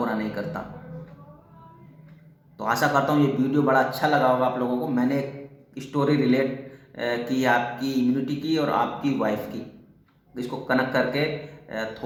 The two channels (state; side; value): identical; both; correlation 1.00